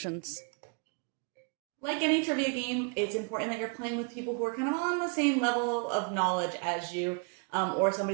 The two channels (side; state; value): left; quieter; 37.8 dB